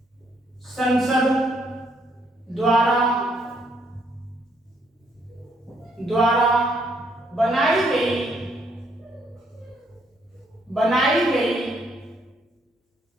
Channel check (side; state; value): both; normal; correlation 0.71